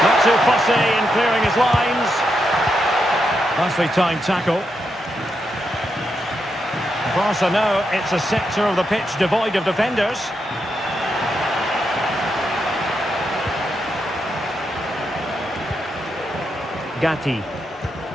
Not too fussy in clearing his lines. Nicely timed tackle. Barca know it's a sector of the pitch devoid of defenders. Gatti.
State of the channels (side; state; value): both; normal; correlation 0.83